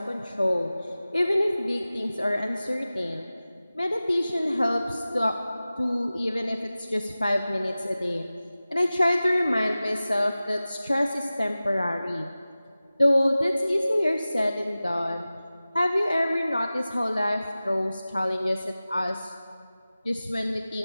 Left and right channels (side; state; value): both; inverted; correlation -0.96